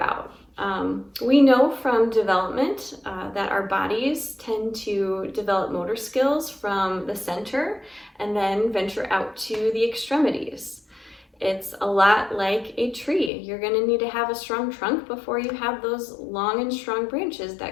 We know from development that our bodies tend to develop motor skills from the center and then venture out to the extremities. It's a lot like a tree. You're going to need to have a strong trunk before you have those long and strong branches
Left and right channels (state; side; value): drops out; right; at 13.3 s